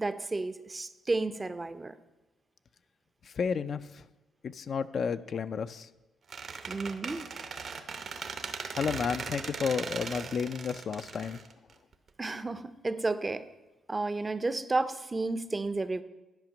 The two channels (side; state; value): both; normal; correlation 0.85